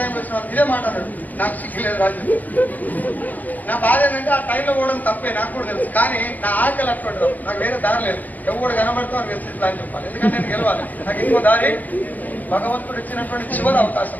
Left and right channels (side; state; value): right; late; 0.082 ms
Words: వచ్చిన ఇదే మాట అన్నాడు. నాకు సిగ్గులేదు రాజు. నా బాధ ఏంటంటే ఆ టైంలో పోవడం తప్పే, నాకు కూడా తెలుసు. కానీ నా ఆకలి అట్లా నాకు వేరే దారి లేదు. ఎవరు కనబడుతూ అని వెస్టిజ్ అని చెప్పాలి, ఎందుకంటే నేను గెలవాలి. నాకు ఇంకో దారి భగవంతుడు ఇచ్చినటువంటి చివరి అవకాశం.